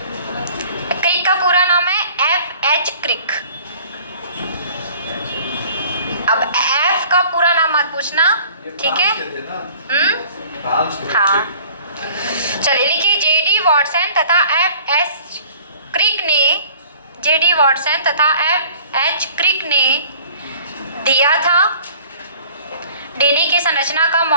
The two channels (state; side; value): inverted; both; correlation -0.50